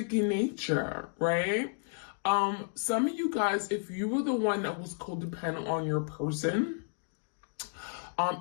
in nature, right? Some of you guys, if you were the one that was codependent on your person,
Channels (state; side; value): silent; right; digital silence